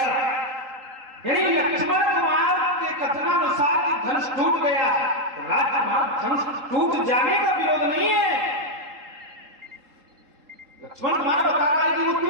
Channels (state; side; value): late; left; 3.8 ms